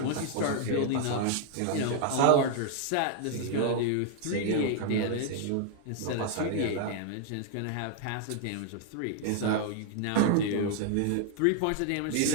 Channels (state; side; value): different; both; correlation 0.00